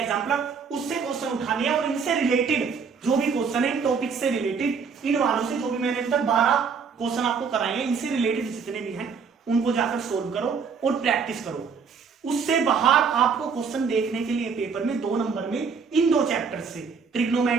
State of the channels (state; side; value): quieter; left; 5.8 dB